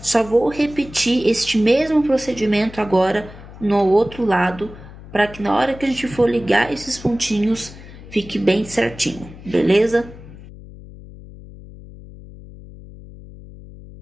vou repetir este mesmo procedimento agora no outro lado, para que na hora que a gente for ligar esses pontinhos, fique bem certinho, beleza?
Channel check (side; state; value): left; noise; hum, 17 dB below the sound